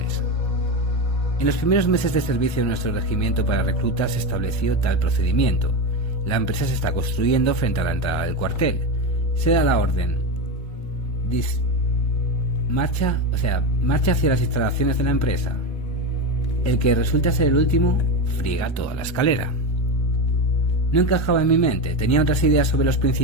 En los primeros meses de servicio de nuestro regimiento para reclutas se estableció tal procedimiento. La empresa se está construyendo frente a la entrada del cuartel. Se da la orden. Marcha hacia las instalaciones de la empresa. El que resulta ser el último friega toda la escalera. No encajaba en mi mente, tenía otras ideas sobre los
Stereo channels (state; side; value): late; right; 1.3 ms